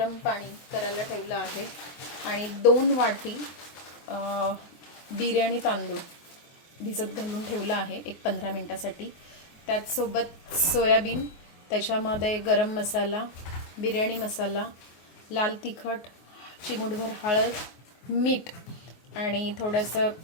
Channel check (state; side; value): late; right; 24 ms